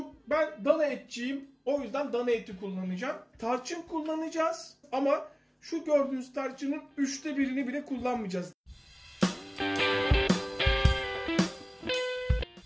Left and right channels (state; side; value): identical; both; correlation 1.00